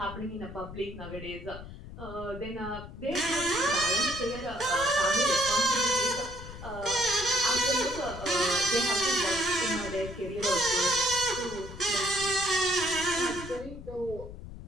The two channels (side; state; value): left; noise; rumble, 13 dB below the sound